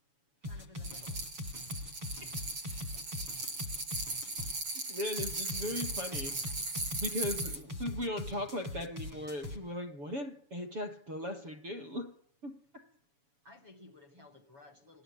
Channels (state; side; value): late; left; 7.1 ms